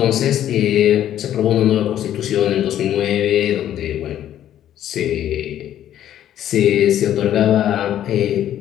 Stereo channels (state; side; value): quieter; right; 11.4 dB